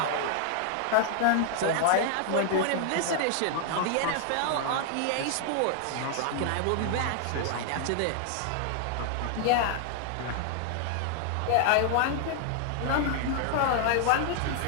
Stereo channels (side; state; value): both; different; correlation 0.00